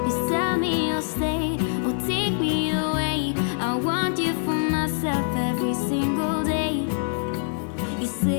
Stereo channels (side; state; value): right; silent; 56 dB below the other